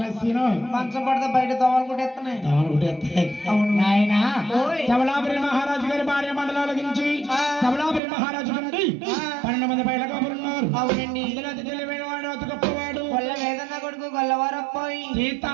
మంచం పడితే బయట దోవలు కొట్టేస్తున్నాయి అవును నాయన సబలాపురి మహారాజు గారి భార్య మండలం అలగించి సబలాపురి మహారాజు నుండి 12 మంది బయట కబురున్నారు. అవునండి ఇందులో అతి తెలివైన వాడు అతి గొప్పవాడు కొల్ల వేదన్న కొడుకు గొల్లవారప్పాయి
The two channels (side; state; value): left; drops out; at 8.0 s